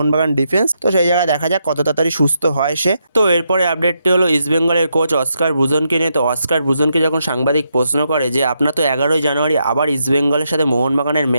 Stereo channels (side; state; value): both; inverted; correlation -0.81